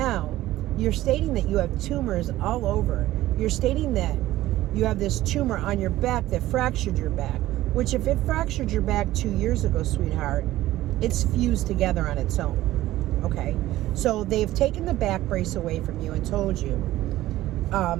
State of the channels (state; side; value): quieter; left; 15.5 dB